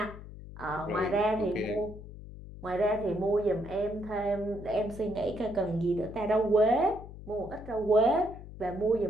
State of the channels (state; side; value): noise; left; hum, 14 dB below the sound